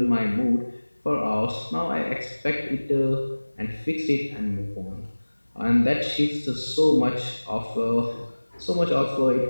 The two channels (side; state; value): both; inverted; correlation -1.00